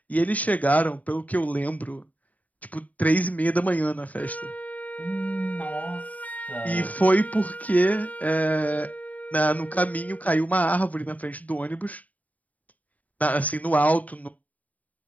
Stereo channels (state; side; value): late; right; 0.073 ms